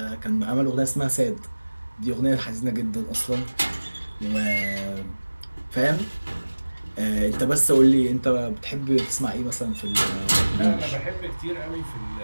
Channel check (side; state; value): both; inverted; correlation -1.00